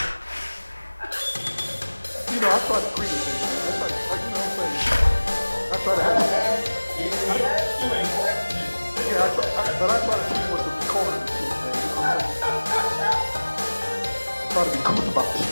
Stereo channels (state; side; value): inverted; both; correlation -1.00